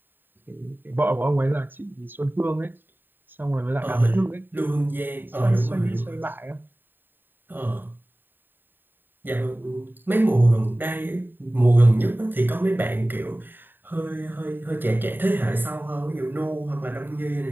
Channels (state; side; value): late; left; 0.094 ms